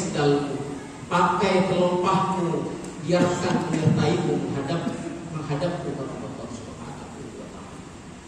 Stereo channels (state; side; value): identical; both; correlation 1.00